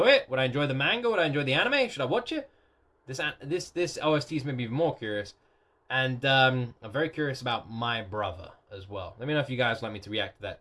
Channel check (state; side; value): identical; both; correlation 1.00